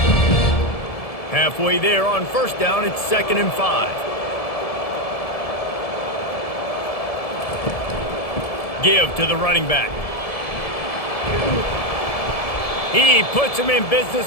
Halfway there on 1st down, it's 2nd and 5. Give to the running back. He puts him in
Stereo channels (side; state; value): right; late; 1.7 ms